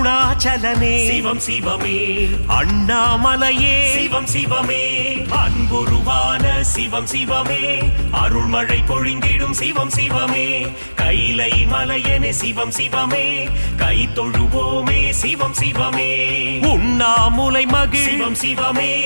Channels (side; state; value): both; inverted; correlation -1.00